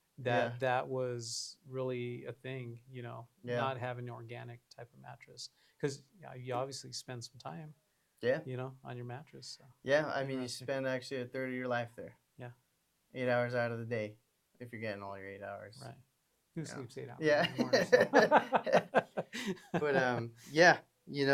Yeah. that that was really a thing, Yeah. not having an organic type of mattress. Because you obviously spend some time, Yeah. on your mattress. So Yeah. I mean, you interesting. spend actually a third of your life there. Yeah. 8 hours out of the day, if you're getting all your 8 hours. Right. Who Yeah. sleeps 8 hours Yeah. anymore? So. But yeah,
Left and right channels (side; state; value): both; identical; correlation 1.00